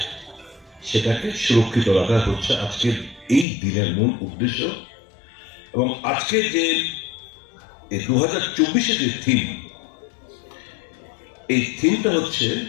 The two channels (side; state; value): right; drops out; at 3.5 s